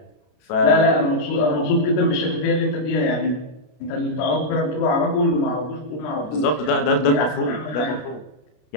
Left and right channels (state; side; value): late; right; 33 ms